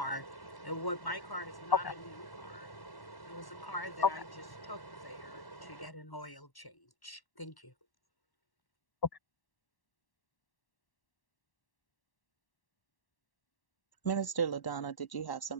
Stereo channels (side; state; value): right; late; 1.1 ms